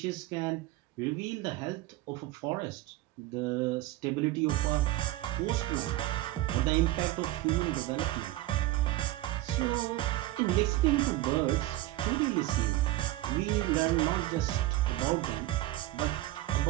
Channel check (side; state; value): left; quieter; 16.5 dB